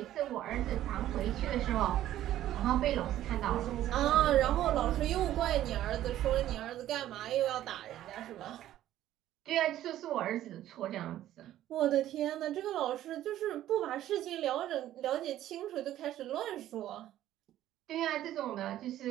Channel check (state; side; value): quieter; left; 13.0 dB